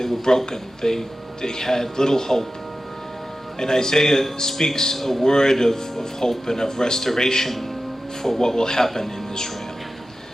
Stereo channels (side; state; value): both; normal; correlation 0.94